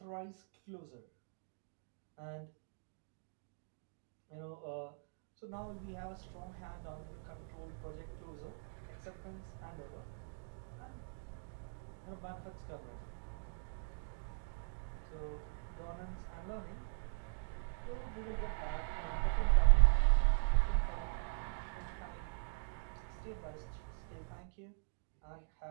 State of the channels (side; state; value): left; silent; digital silence